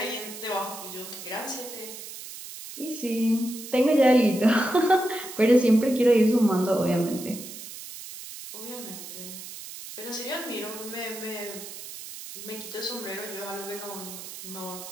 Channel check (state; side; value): noise; right; hiss, 12 dB below the sound